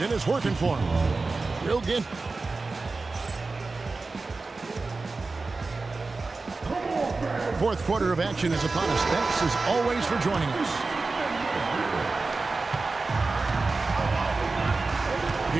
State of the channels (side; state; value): left; quieter; 3.8 dB